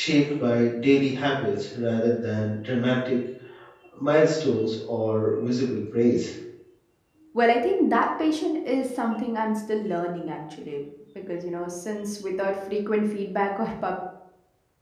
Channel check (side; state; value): both; identical; correlation 1.00